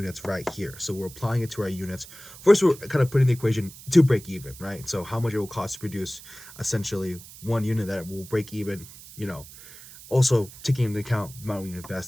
right here. So we're applying it to our units. First, we're kind of putting the equation to break even, right? So how much it will cost to produce essentially one unit that will break even, you know, also taking into account the amount we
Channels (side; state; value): right; noise; hiss, 17 dB below the sound